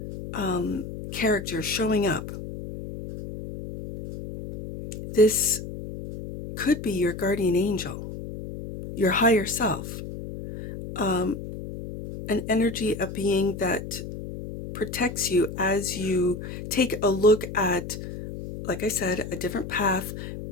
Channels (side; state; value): left; noise; hum, 9 dB below the sound